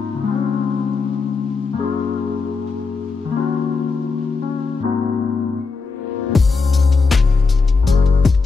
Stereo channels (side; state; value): right; quieter; 4.5 dB